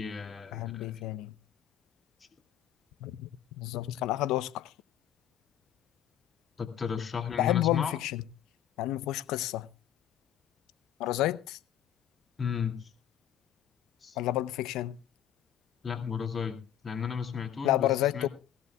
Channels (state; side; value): quieter; right; 11.1 dB